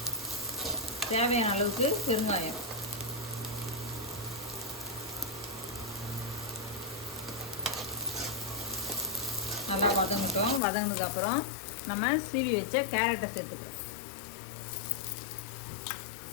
தேவையான அளவுக்கு பெருங்காயம். நல்லா வதங்கிட்டோம். வதங்கினதுக்கப்புறம் நம்ம சீவி வச்ச கேரட்டை சேர்த்துக்கிறோம்.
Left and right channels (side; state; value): right; drops out; at 10.6 s